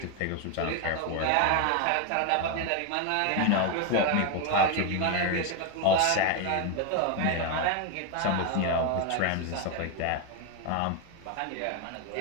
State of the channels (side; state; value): both; different; correlation 0.01